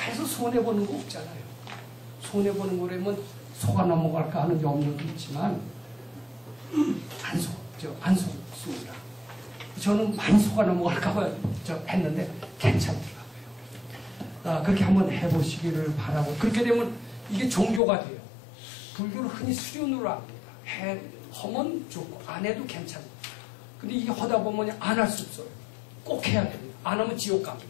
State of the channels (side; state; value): right; drops out; at 17.8 s